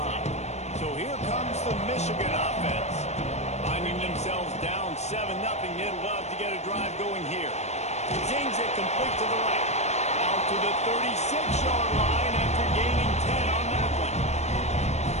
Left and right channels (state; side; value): late; right; 0.32 ms